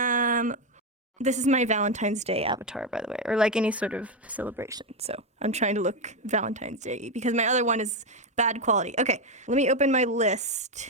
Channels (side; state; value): both; normal; correlation 0.08